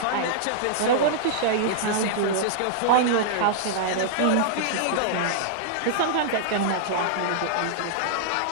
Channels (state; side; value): different; both; correlation -0.01